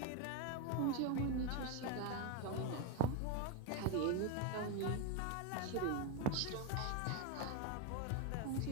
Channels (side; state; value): both; different; correlation 0.02